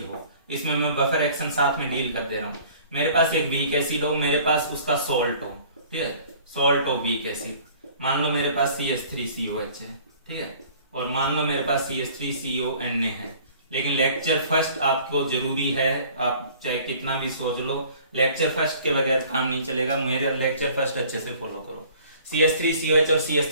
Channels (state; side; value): inverted; both; correlation -0.51